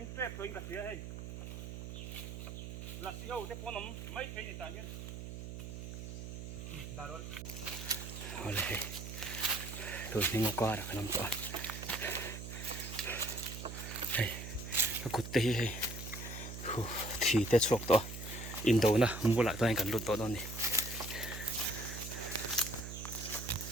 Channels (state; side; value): noise; right; hum, 8 dB below the sound